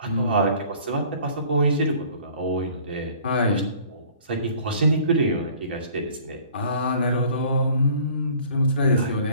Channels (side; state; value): both; inverted; correlation -0.52